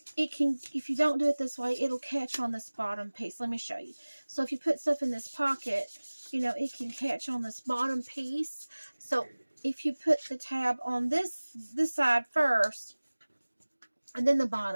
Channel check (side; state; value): both; inverted; correlation -1.00